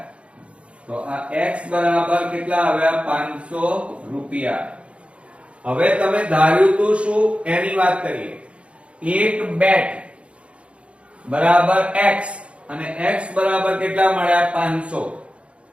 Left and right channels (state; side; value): late; left; 0.061 ms